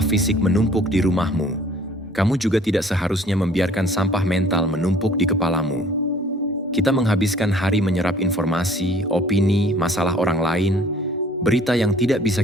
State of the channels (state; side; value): normal; both; correlation 0.54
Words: fisik menumpuk di rumahmu, kamu juga tidak seharusnya membiarkan sampah mental menumpuk di kepalamu. Kita menghabiskan hari menyerap informasi, opini, masalah orang lain, berita yang tidak bisa